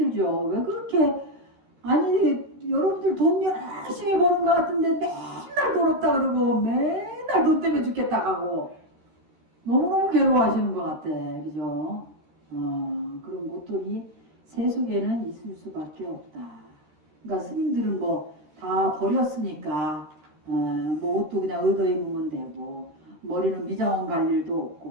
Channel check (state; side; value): late; left; 13 ms